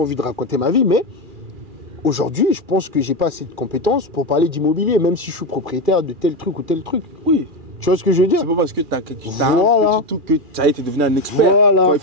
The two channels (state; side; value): late; left; 2.4 ms